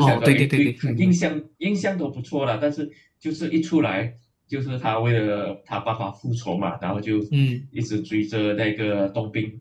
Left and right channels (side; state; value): both; identical; correlation 1.00